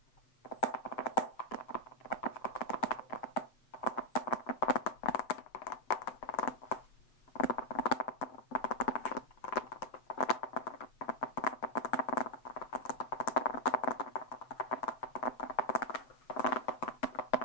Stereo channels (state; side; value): late; right; 7.8 ms